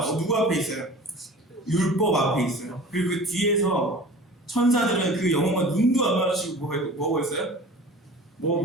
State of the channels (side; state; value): both; normal; correlation 0.41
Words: 누구 앞에 있어요? 율법 앞에 있어요. 그리고 그 뒤에서 천사들은 그 영혼과 눈도 안 마주치고 뭐 보고 있어요? 뭐